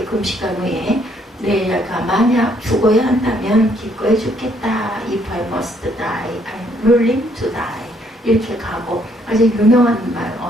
금식한 후에 내가 만약 죽어야 한다면 기꺼이 죽겠다. If I must die, I'm willing to die. 이렇게 가고 아주 유명한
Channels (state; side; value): normal; both; correlation 0.68